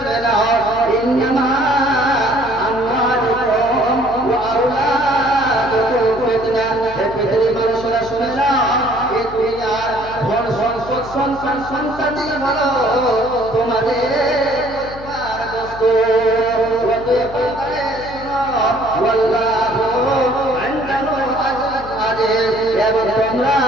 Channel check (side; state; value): left; noise; hum, 15 dB below the sound